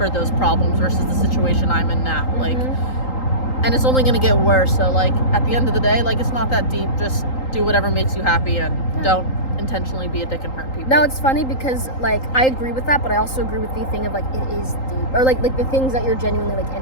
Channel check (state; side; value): late; right; 3.8 ms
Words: those problems versus the situation I'm in now. Like, and it's only gonna get worse. So like at the end of the day, like it's not that deep. Just do whatever makes you happy and don't intentionally be a dick and hurt people. Now it's funny because like I agree with that, but I also agree with the thing of like it is deep, or like the things that you're genuinely like